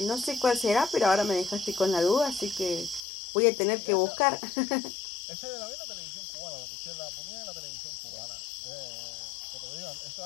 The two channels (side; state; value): right; drops out; at 3.0 s